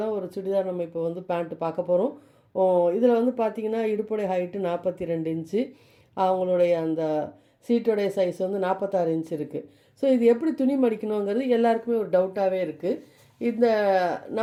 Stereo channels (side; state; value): both; identical; correlation 1.00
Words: தான் ஒரு சுடிதார் நம்ம இப்போ பேண்ட்டு பார்க்க போகிறோம். இதில் பார்த்தீங்கன்னா இடுப்புடைய ஹைட்டு 42 இன்ச்சு, அவங்களுடைய அந்த சீட்டோடைய சைஸ் 46 இன்ச் இருக்குது. ஸோ இது எப்படி துணி மடிக்கணுங்கிறது எல்லாருக்குமே ஒரு டவுட்டாகவே இருக்குது. இந்த